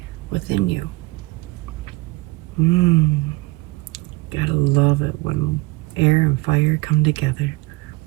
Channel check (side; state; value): left; quieter; 22.4 dB